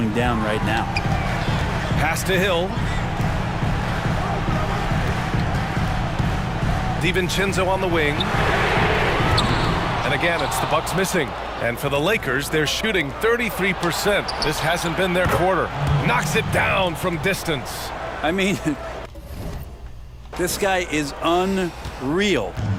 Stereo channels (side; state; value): both; identical; correlation 1.00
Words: down right now. Pass to Hill. DiVincenzo on the wing. And again, it's the Bucks missing. And for the Lakers, they're shooting 33%. This hasn't been their quarter. Knocks it down from distance. I mean, This guy is unreal.